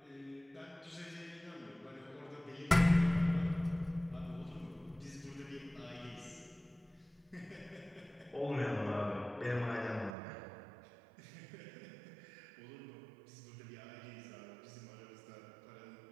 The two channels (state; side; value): drops out; left; at 10.1 s